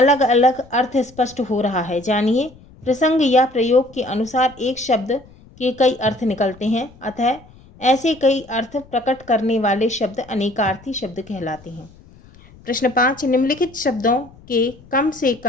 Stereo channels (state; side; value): noise; left; rumble, 24 dB below the sound